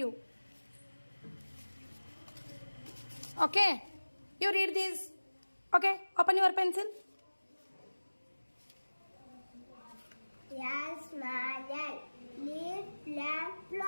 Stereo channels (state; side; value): inverted; both; correlation -1.00